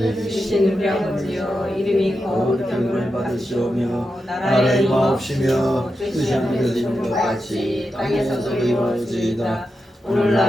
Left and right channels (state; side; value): normal; both; correlation 0.89